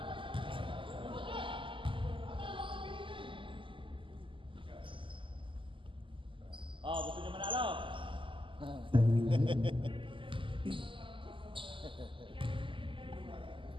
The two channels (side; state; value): left; late; 0.25 ms